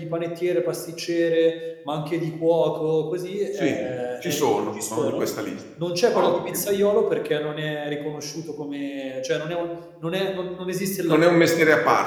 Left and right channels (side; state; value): both; identical; correlation 1.00